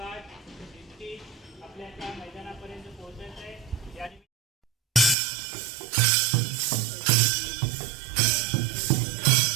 शिस्ती आपल्या त्या मैदानापर्यंत पोहोचायचं आहे. याने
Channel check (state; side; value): drops out; left; at 5.2 s